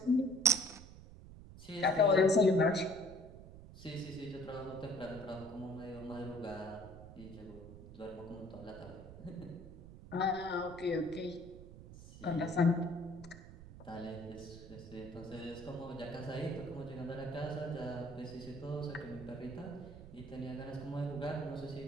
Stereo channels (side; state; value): right; noise; rumble, 15 dB below the sound